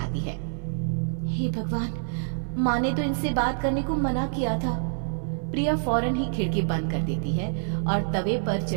है। हे भगवान, माँ ने तो इनसे बात करने को मना किया था। प्रिया फौरन ही खिड़की बंद कर देती है और तवे पर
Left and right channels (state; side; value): silent; left; digital silence